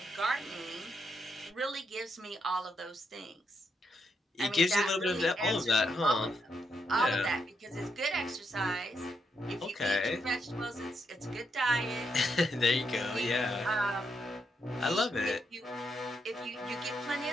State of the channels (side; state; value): both; normal; correlation 0.80